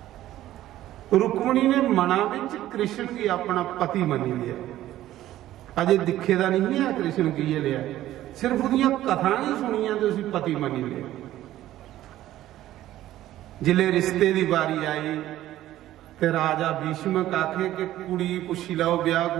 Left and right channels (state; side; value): quieter; left; 13.9 dB